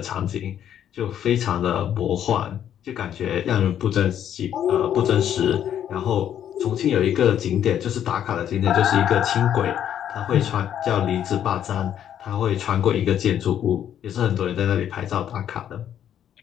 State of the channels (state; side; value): quieter; right; 10.0 dB